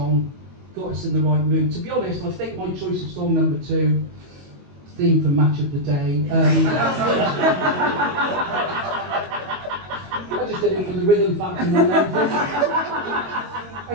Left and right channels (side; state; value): left; late; 22 ms